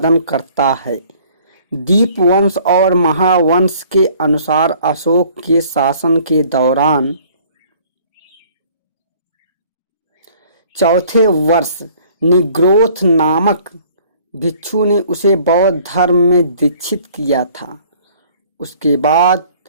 करता है। दीपवंश और महावंश के अनुसार अशोक के शासन के दौरान चौथे वर्ष निग्रोथ नामक भिक्षु ने उसे बौद्ध धर्म में दीक्षित किया था। उसके बाद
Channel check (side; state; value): both; inverted; correlation -0.55